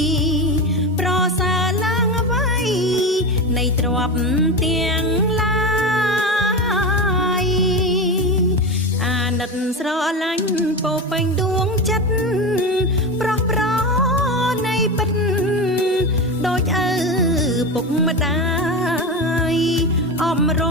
ប្រសើរឡើងអ្វីនៃទ្រព្យទាំងឡាយអាណិតស្រឡាញ់ពោពេញដួងចិត្តប្រោះប្រនៃពិតដូចឪពុកម្ដាយអំរ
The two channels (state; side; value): normal; both; correlation 0.20